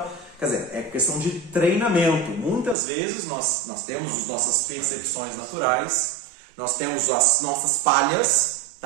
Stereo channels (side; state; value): left; drops out; at 2.8 s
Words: quer dizer, é questão de treinamento. Muitas vezes nós temos as nossas percepções naturais, nós temos as nossas falhas,